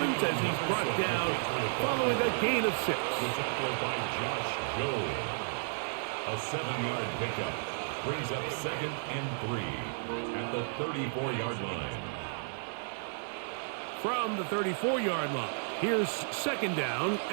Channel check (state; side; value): silent; left; 56 dB below the other